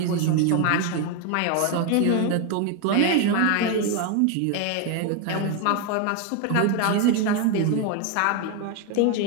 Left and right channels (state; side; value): different; both; correlation 0.01